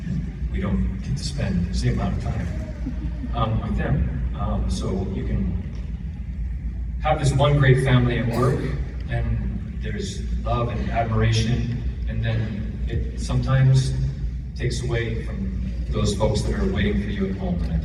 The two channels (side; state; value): both; identical; correlation 1.00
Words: We don't get to spend the same amount of time with them. So you can have this one great family at work, and there's love and admiration, and then it sometimes takes away from those folks that are waiting for you at home, and I